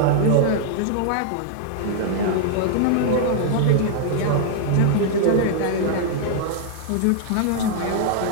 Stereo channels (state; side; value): different; both; correlation -0.01